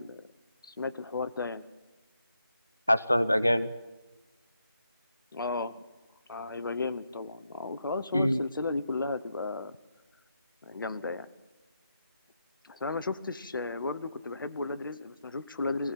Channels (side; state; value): both; inverted; correlation -0.82